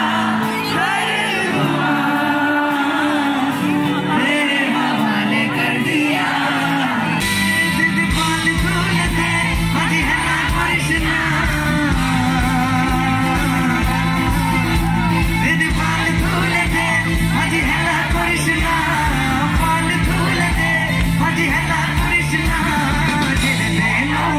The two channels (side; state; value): both; identical; correlation 1.00